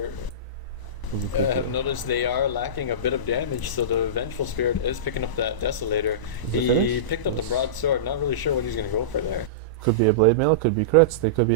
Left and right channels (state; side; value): late; right; 1.0 ms